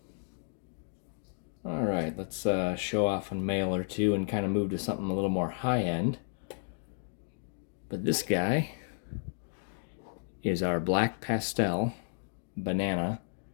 All right, let's show off a male or two and kind of move to something a little more high-end. But this guy is our black pastel banana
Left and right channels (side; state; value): right; silent; 56 dB below the other